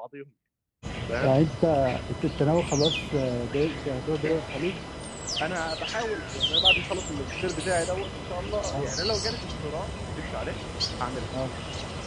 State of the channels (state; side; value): identical; both; correlation 1.00